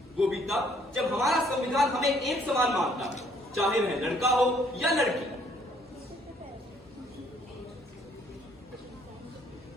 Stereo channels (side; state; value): both; normal; correlation 0.64